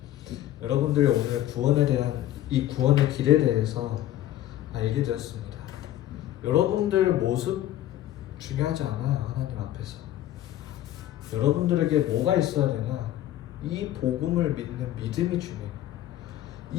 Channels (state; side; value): quieter; right; 13.2 dB